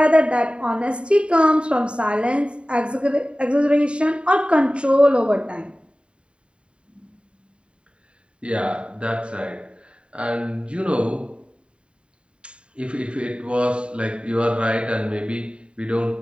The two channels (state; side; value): late; left; 0.055 ms